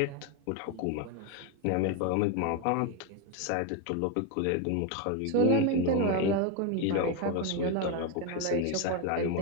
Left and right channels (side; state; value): both; different; correlation 0.02